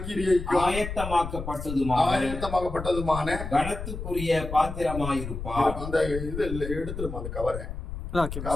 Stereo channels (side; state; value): left; noise; rumble, 7 dB below the sound